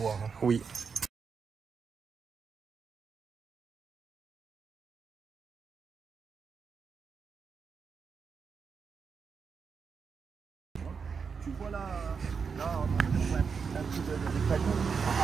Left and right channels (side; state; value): left; quieter; 5.8 dB